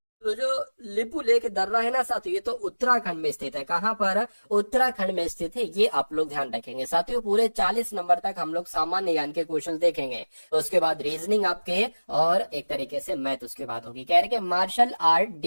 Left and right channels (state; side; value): inverted; both; correlation -1.00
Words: तो जो लिपू लेक दर्रा है ना साथियों, ये तो उत्तराखंड में स्थित है। कहाँ पर? उत्तराखंड में स्थित है। ये आप लोग ध्यान रखेंगे साथियों। पूरे 40 नंबर तक हम लोग सामान्य ज्ञान के क्वेश्चन देखेंगे, तो उसके बाद रीजनिंग आपके, और एक तरीके से मैथ उसके बाद होगी। कह रहे कि मार्शल आर्ट